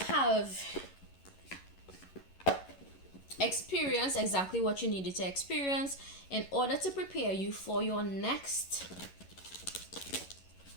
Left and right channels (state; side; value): late; right; 11 ms